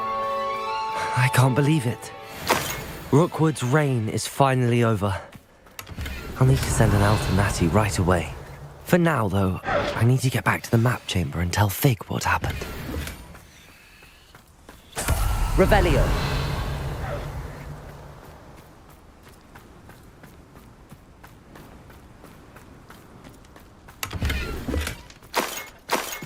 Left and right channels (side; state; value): both; identical; correlation 1.00